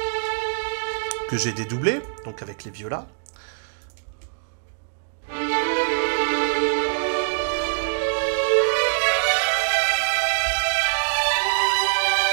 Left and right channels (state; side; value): silent; left; digital silence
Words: Que j'ai dédoublé, donc avec les violas.